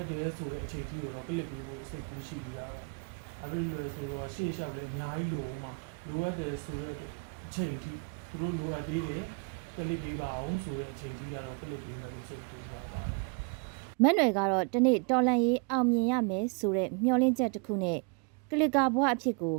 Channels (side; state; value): left; quieter; 36.7 dB